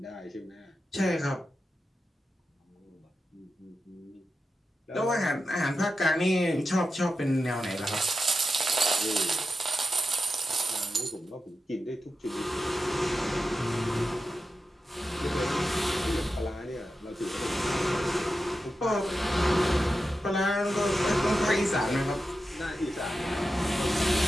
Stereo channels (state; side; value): normal; both; correlation 0.91